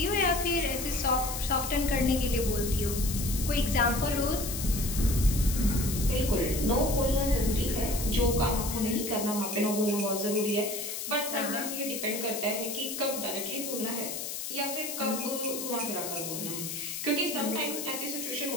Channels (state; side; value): noise; left; hiss, 5 dB below the sound